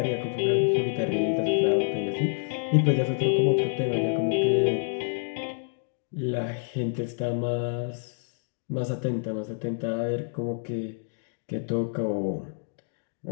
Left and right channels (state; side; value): silent; right; digital silence